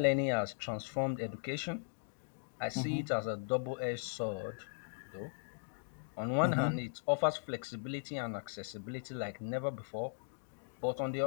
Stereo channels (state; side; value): silent; right; digital silence